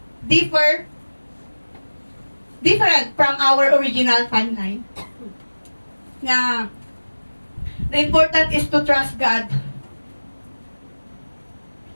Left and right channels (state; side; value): inverted; both; correlation -1.00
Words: different from our original timeline. Na the important is to trust God